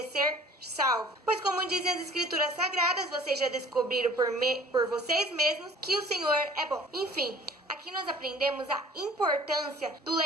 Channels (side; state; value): both; normal; correlation 0.49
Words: salvos. Pois, como dizem as Escrituras Sagradas, vocês já descobriram por vocês mesmos que o Senhor é bom. Enfim, aqui nós aprendemos a importância do